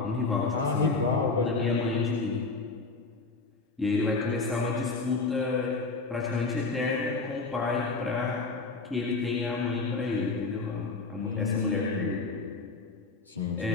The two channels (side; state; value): right; quieter; 3.9 dB